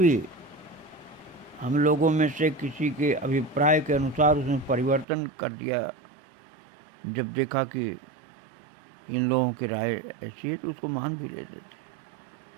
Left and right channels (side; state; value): left; drops out; at 5.1 s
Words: हम लोगों में से किसी के अभिप्राय के अनुसार उसमें परिवर्तन कर दिया। जब देखा कि इन लोगों की राय ऐसी है तो उसको मान भी लेते